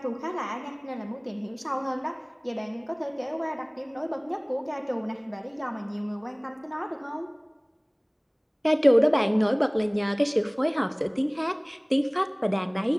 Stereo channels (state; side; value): identical; both; correlation 1.00